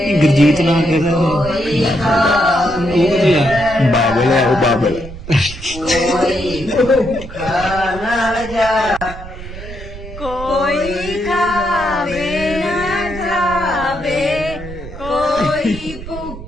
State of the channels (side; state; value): right; noise; rumble, 12 dB below the sound